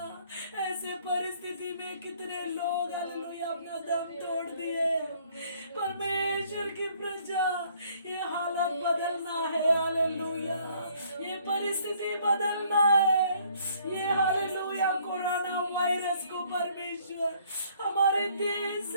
ऐसे परिस्थिति में कितने लोग हालेलुया अपना दम तोड़ दिए परमेश्वर की प्रजा ये हालत बदलना है हालेलुया ये परिस्थिति बदलना है ये हालेलुया कोरोना वायरस को परमेश्वर हमारे देश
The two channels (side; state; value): both; inverted; correlation -0.62